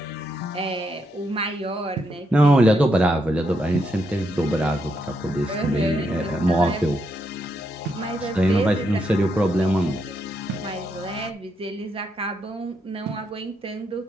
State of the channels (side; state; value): both; normal; correlation 0.80